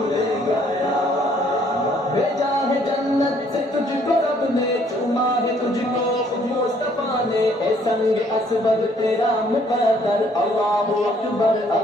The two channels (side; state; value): both; normal; correlation 0.63